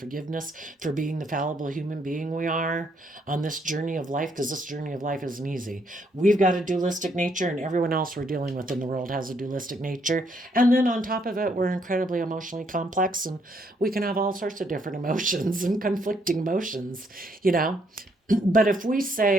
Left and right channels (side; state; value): both; normal; correlation 0.72